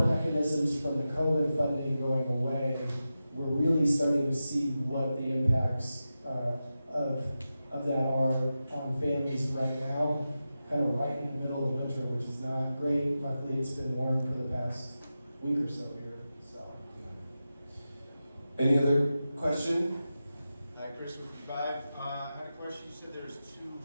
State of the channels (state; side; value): inverted; both; correlation -0.92